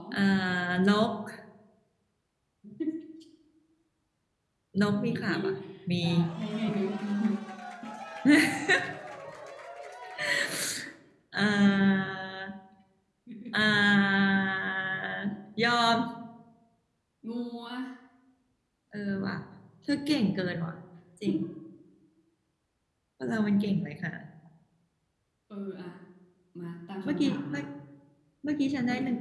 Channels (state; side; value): identical; both; correlation 1.00